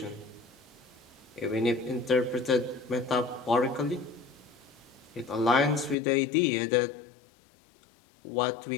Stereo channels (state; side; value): drops out; right; at 6.0 s